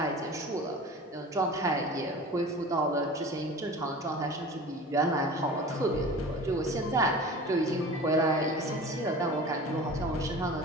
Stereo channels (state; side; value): normal; both; correlation 0.38